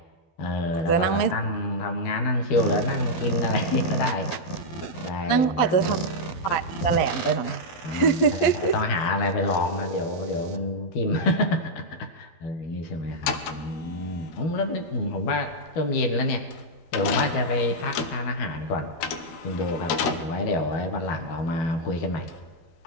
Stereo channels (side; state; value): right; late; 12 ms